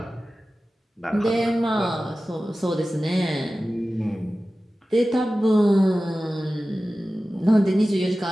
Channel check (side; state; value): both; normal; correlation 0.95